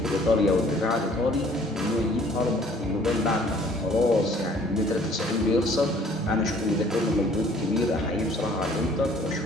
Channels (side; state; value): both; normal; correlation 0.56